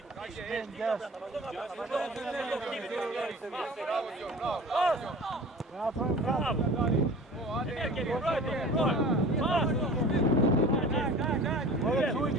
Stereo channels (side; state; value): both; normal; correlation 0.41